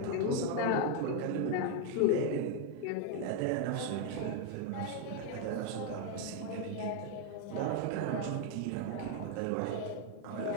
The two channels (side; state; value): both; different; correlation 0.01